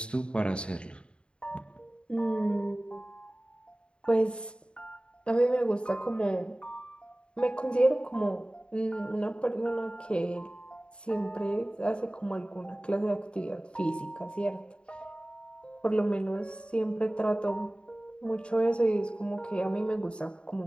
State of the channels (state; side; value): late; right; 0.053 ms